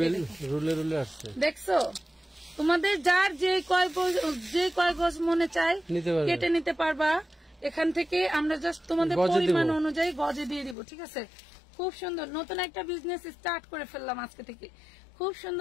রুলে রুলে আসছে, দেখছো? তোমাদের যার যে কয় গজ মনে চায় কেটে নিতে পারবা এখান থেকে। আমরা জাস্ট তোমাদের পরিমাণ অনুযায়ী গজে দিয়ে দিব, ঠিক আছে? খুব সুন্দর, নতুন একটা বিজনেস স্টার্ট করে ফেললাম আজকে থেকে। খুব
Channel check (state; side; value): drops out; right; at 10.8 s